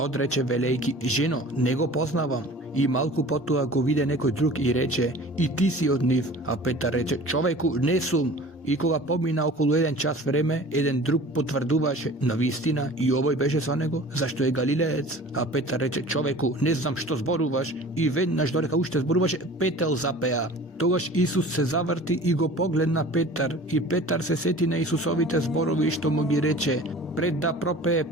велејки: жено, не го познавам. И малку потоа го виде некој друг и рече: и ти си од нив. А Петар рече: човеку, не сум. И кога помина околу 1 час време, еден друг потврдуваше: навистина и овој беше со него, зашто е галилеец. А Петар рече: човеку, не знам што зборуваш. И веднаш додека уште зборуваше, петел запеа. Тогаш Исус се заврти и го погледна Петар, и Петар се сети на Исусовите зборови што му ги рече: пред да пропее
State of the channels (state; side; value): normal; both; correlation 0.43